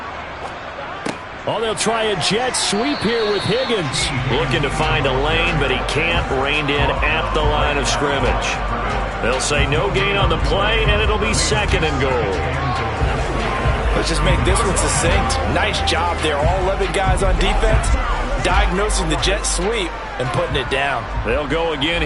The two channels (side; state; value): both; identical; correlation 1.00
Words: Oh, they'll try a jet sweep here with Higgins. Looking to find a lane, but he can't. Reined in at the line of scrimmage. They'll say no gain on the play, and it'll be 2nd and goal. Let's just make this one succinct. Nice job there. All 11 guys on defense diagnosing the jet sweep and putting it down. They'll go again